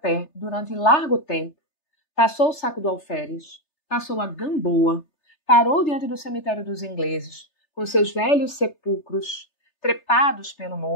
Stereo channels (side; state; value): right; late; 3.3 ms